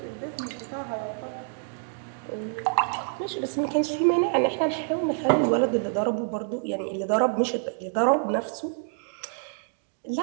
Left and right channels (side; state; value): left; silent; 60 dB below the other